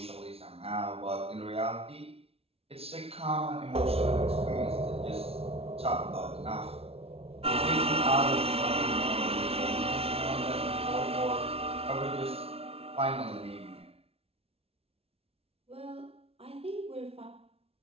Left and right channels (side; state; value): left; late; 0.29 ms